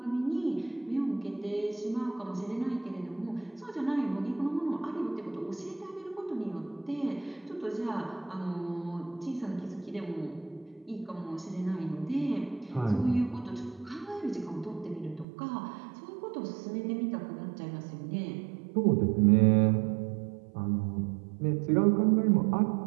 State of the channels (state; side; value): drops out; left; at 15.2 s